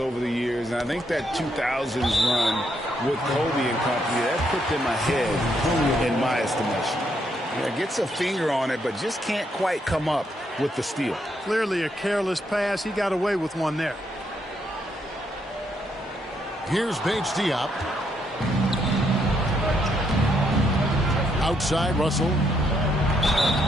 the years, and I think that 2000s run with Kobe and company, that put them ahead in my estimation. Yeah, gets a finger on it, but just can't quite come up with the steal. Clearly a careless pass. He got away with one there. Here's Bates Diop. Outside, Russell.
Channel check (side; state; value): both; normal; correlation 0.75